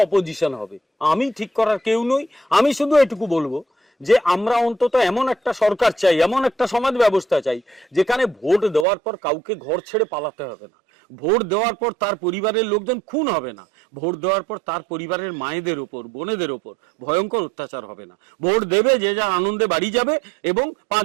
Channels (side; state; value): left; drops out; at 8.8 s